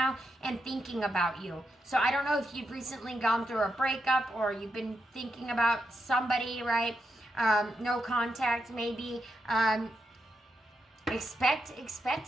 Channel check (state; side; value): normal; both; correlation 0.84